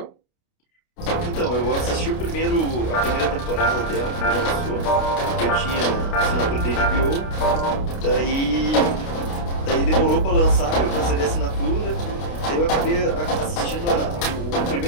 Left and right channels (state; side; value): late; right; 29 ms